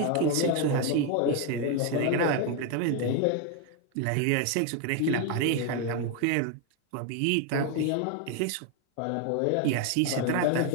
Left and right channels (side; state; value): both; different; correlation 0.01